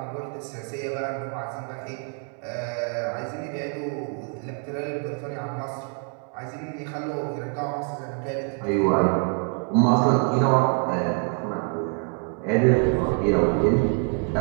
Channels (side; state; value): left; quieter; 39.8 dB